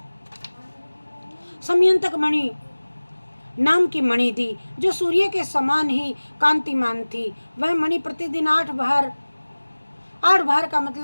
समयंतक मणि नाम की मणि दी, जो सूर्य के समान ही कांतिमान थी। वह मणि प्रतिदिन 8 भार का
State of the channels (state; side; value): inverted; both; correlation -1.00